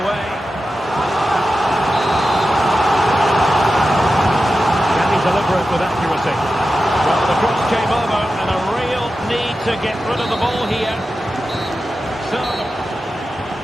way. Can he deliver it with accuracy? Well, the cross came over, and a real need to get rid of the ball here.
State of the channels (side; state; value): both; normal; correlation 0.92